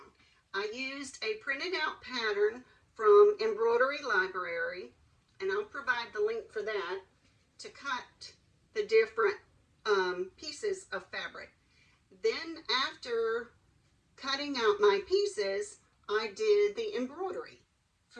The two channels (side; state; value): both; identical; correlation 1.00